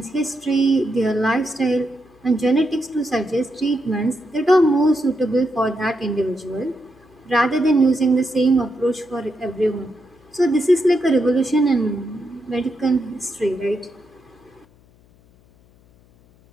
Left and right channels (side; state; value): left; noise; hum, 30 dB below the sound